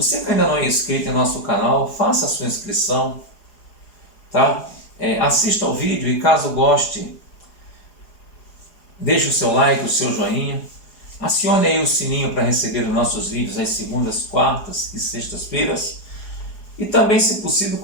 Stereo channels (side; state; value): right; late; 4.8 ms